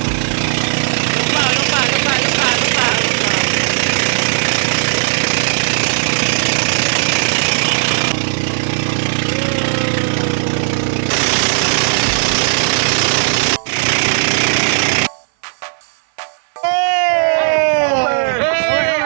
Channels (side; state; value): left; silent; 61 dB below the other